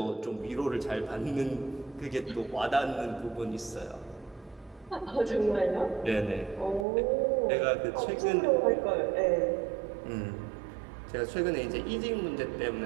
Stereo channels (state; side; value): drops out; left; at 6.9 s